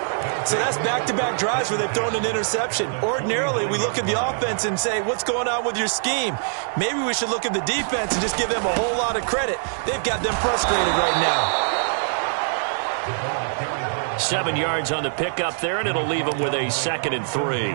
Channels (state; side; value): silent; left; digital silence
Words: So that's back-to-back drives where they've thrown an interception. Ordinarily, we look at the offense and say, what's going on with your scheme? Maybe we should look at the defense and just give them a whole lot of credit. They've got them frustrated right now. 7 yards on the pickup there, and it'll leave them with a 2nd and 3.